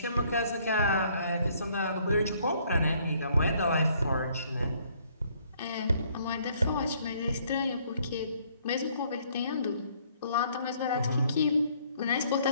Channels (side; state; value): both; inverted; correlation -0.64